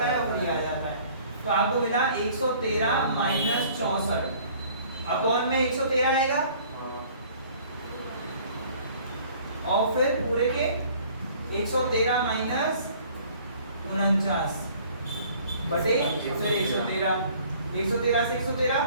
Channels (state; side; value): inverted; both; correlation -0.54